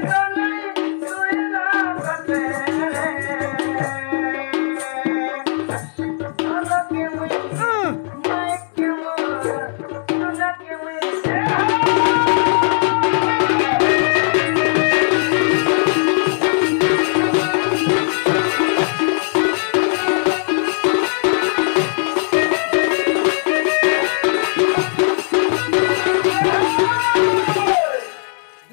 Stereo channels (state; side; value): silent; right; digital silence